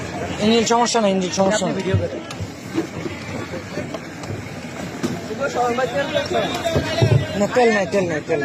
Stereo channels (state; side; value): identical; both; correlation 1.00